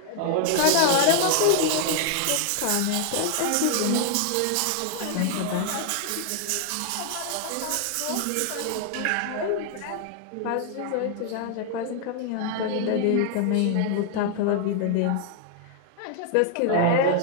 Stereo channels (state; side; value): different; both; correlation 0.00